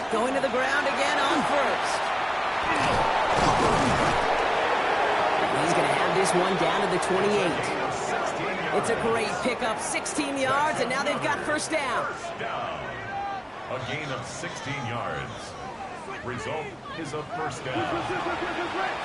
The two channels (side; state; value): both; identical; correlation 1.00